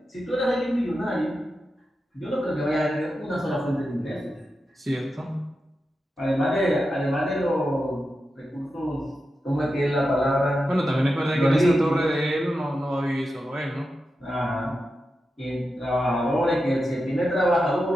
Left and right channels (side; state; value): both; normal; correlation 0.90